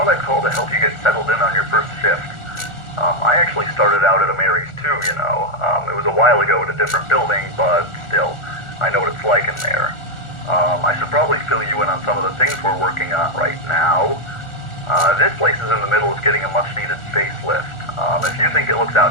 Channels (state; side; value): late; right; 1.4 ms